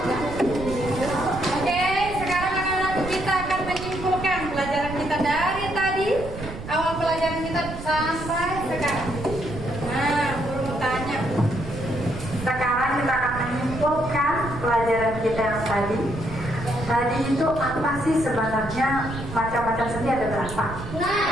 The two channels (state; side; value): noise; right; rumble, 10 dB below the sound